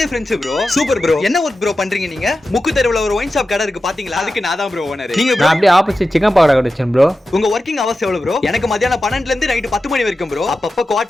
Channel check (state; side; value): normal; both; correlation 0.92